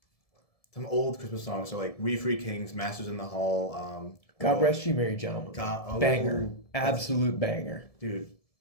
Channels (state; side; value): late; right; 1.7 ms